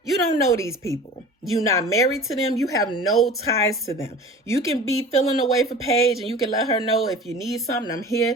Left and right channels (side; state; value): both; normal; correlation 0.40